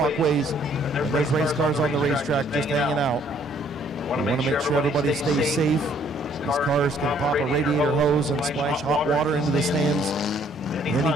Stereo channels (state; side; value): normal; both; correlation 0.63